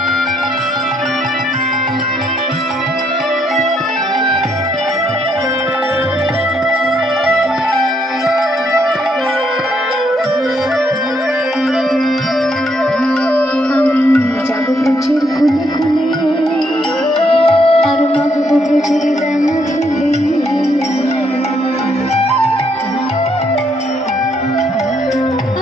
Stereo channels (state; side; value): normal; both; correlation 0.73